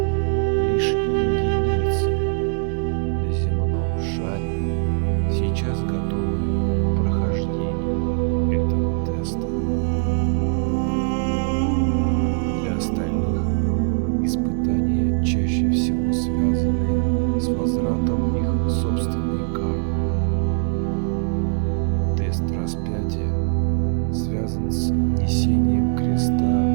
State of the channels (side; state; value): left; silent; digital silence